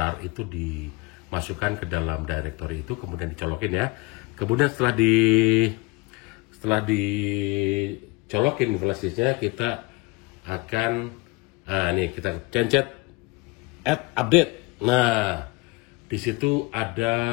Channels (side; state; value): right; quieter; 25.3 dB